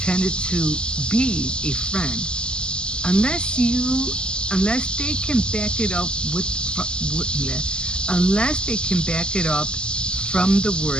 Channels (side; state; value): right; late; 0.052 ms